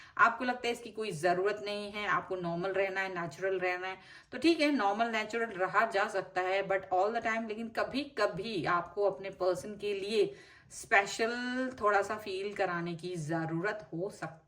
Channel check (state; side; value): identical; both; correlation 1.00